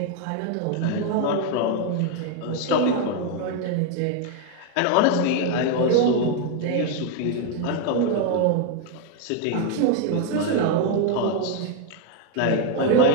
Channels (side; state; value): both; different; correlation 0.01